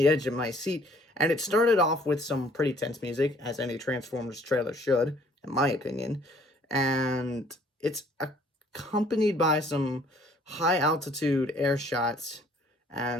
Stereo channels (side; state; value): both; normal; correlation 0.58